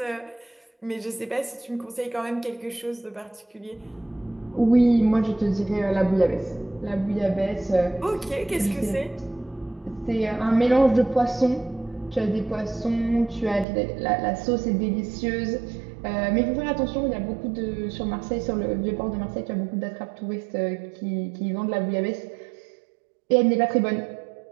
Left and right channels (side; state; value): left; drops out; at 13.7 s